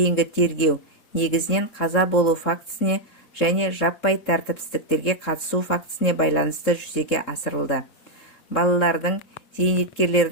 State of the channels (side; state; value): right; late; 3.7 ms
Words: тергеу негізінен қаза болу фактісіне және жаппай тәртіпсіздіктерге қатысу фактісіне байланысты жүзеге асырылды. Балалардың,